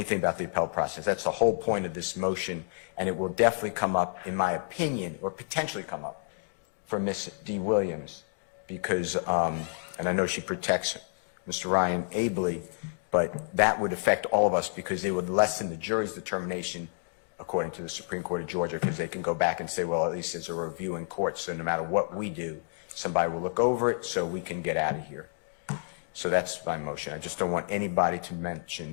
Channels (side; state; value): right; silent; digital silence